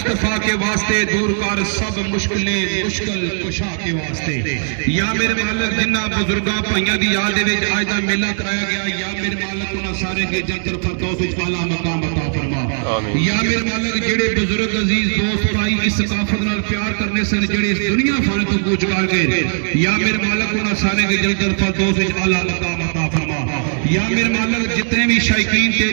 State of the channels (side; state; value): left; silent; 67 dB below the other